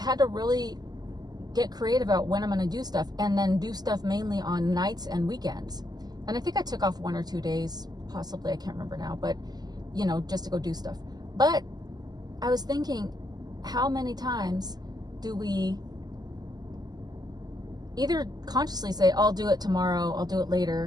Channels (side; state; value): left; late; 0.20 ms